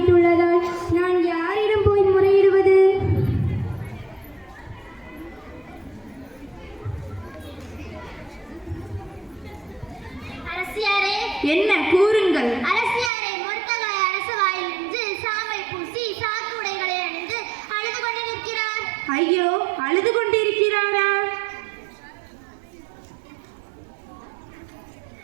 நான் யாரிடம் போய் முறையிடுவது? அரசியாரே, என்ன கூறுங்கள். அரசியாரே, மொர்தகாய் அரசு வாயில் நின்று சாமை பூசி சாக்கு உடைகளை அணிந்து அழுது கொண்டு நிற்கிறார். ஐயோ, அழுது கொண்டிருக்கிறாரா?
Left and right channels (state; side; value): drops out; left; at 13.1 s